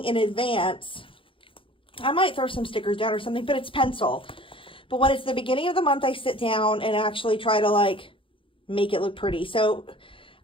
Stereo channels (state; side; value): late; right; 0.25 ms